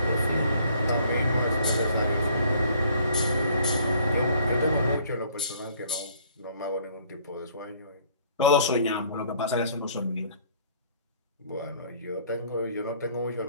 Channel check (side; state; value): both; inverted; correlation -0.59